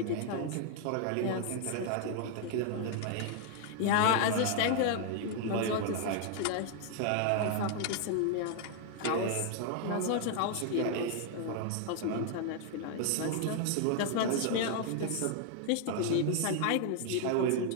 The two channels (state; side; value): different; both; correlation 0.00